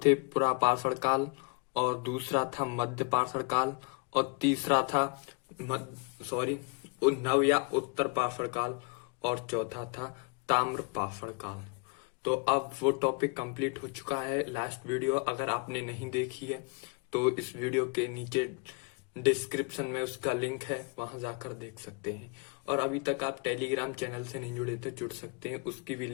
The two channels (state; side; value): quieter; right; 30.6 dB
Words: पूरा पाषाण काल, और दूसरा था मध्य पाषाण काल, और तीसरा था नव या उत्तर पाषाण काल, और चौथा था ताम्र पाषाण काल। तो अब वो टॉपिक कंप्लीट हो चुका है। लास्ट वीडियो अगर आपने नहीं देखी है तो इस वीडियो के नीचे डिस्क्रिप्शन में उसका लिंक है, वहां जाकर देख सकते हैं। और अभी तक आप टेलीग्राम चैनल से नहीं जुड़े तो जुड़ सकते हैं, उसकी भी